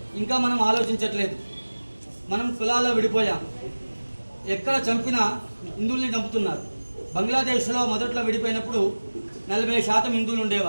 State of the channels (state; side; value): inverted; both; correlation -1.00